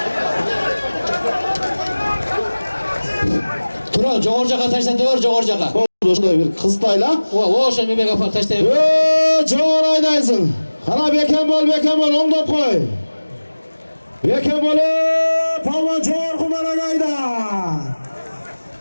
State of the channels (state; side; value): inverted; both; correlation -1.00